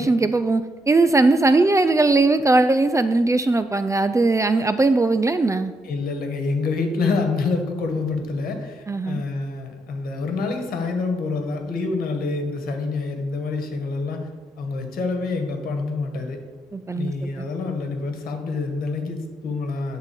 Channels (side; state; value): both; normal; correlation 0.79